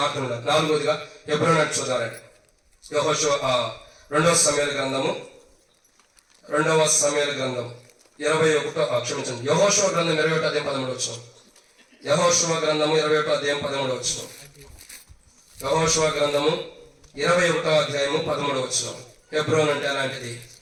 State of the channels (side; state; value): both; identical; correlation 1.00